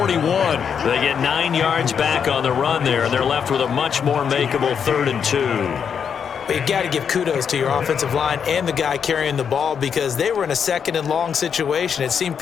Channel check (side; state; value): right; quieter; 7.2 dB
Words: They get 9 yards back on the run there, and they're left with a much more makeable 3rd and 2. But you got to give kudos to your offensive line and the guy carrying the ball because they were in a 2nd and long situation. It seemed